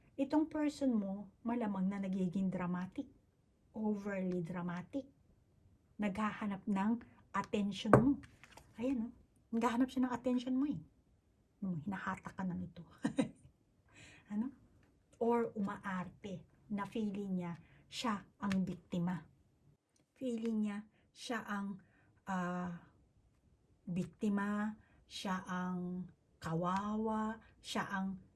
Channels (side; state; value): both; identical; correlation 1.00